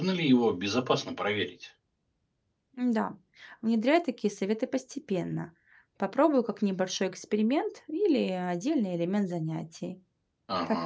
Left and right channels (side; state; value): both; identical; correlation 1.00